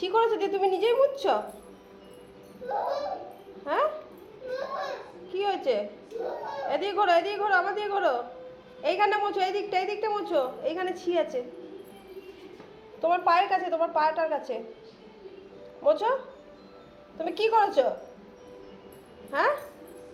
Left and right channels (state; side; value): identical; both; correlation 1.00